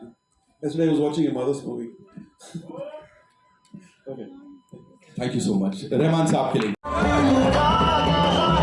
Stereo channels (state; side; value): identical; both; correlation 1.00